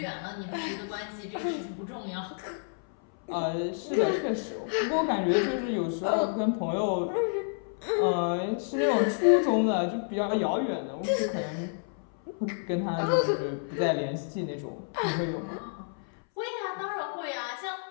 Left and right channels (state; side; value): silent; right; 58 dB below the other